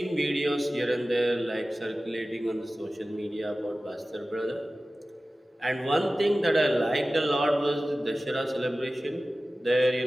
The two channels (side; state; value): both; normal; correlation 0.96